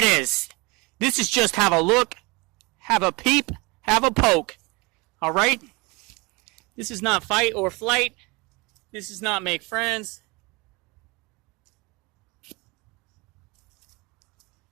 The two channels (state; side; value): quieter; left; 26.6 dB